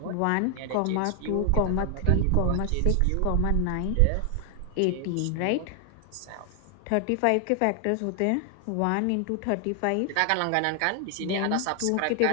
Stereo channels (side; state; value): both; different; correlation 0.00